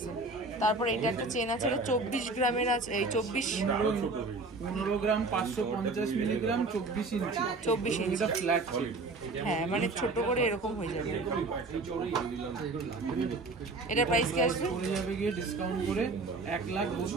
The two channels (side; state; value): left; quieter; 3.5 dB